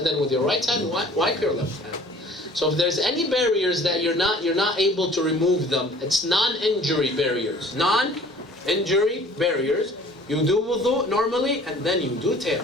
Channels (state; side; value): normal; both; correlation 0.50